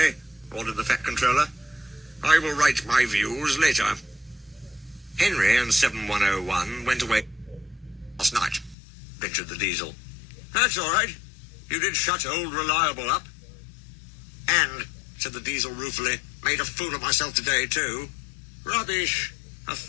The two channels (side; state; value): right; drops out; at 8.8 s